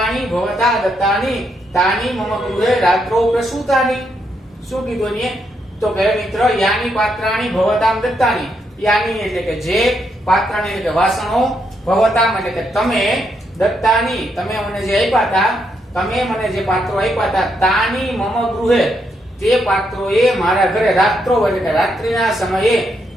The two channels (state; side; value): normal; both; correlation 0.78